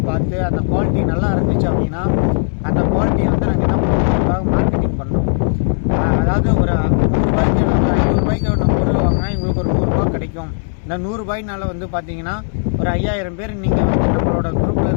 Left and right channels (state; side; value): silent; right; 64 dB below the other